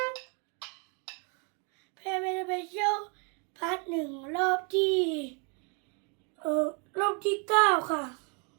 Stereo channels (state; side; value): quieter; left; 35.4 dB